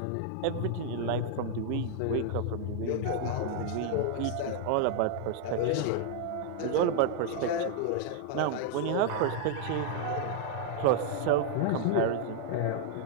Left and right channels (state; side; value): different; both; correlation -0.01